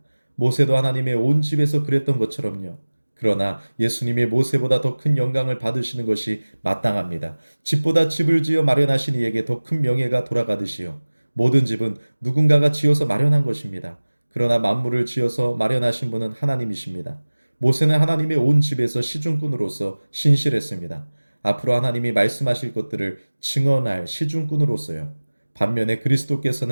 모세도 하나님의 온 집에서 그랬던 것처럼요. 그러나 예수님이 모세보다 더 큰 영광을 받으시는 것이 마땅합니다. 집보다 집을 지어 마련하신 이에게 더 큰 명예가 돌아가듯이요. 모든 집은 누군가가 지어서 마련한 것입니다. 그러나 만물을 지어서 마련하신 분은 하나님이십니다. 모세는 하나님의 온 집에서 시중꾼으로서 신실했습니다. 앞으로 하나님이 말씀하실 것들을 증언할 시중꾼으로서요. 반면에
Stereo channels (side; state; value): both; inverted; correlation -1.00